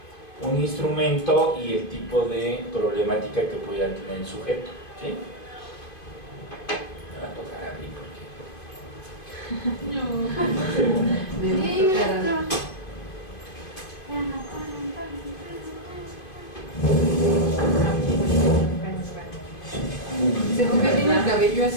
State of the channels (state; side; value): late; right; 2.5 ms